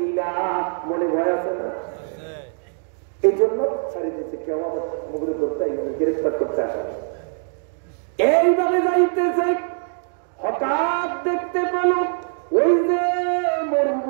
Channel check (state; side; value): silent; left; 62 dB below the other